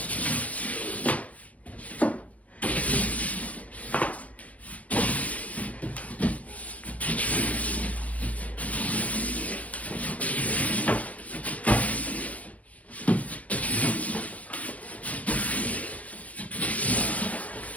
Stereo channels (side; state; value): right; late; 0.067 ms